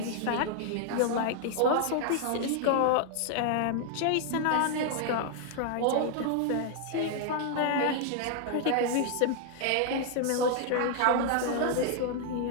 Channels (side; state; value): both; different; correlation 0.00